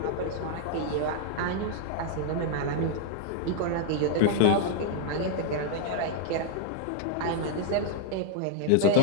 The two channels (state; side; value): different; both; correlation -0.01